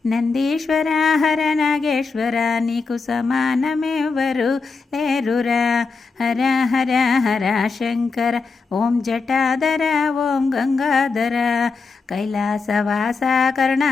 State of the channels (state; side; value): quieter; right; 4.5 dB